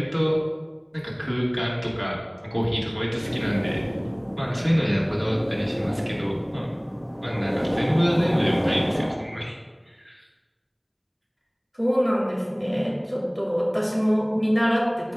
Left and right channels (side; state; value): both; identical; correlation 1.00